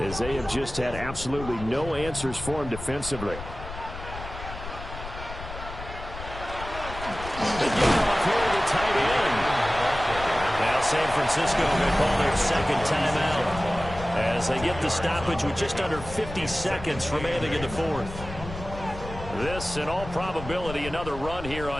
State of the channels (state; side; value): noise; left; rumble, 11 dB below the sound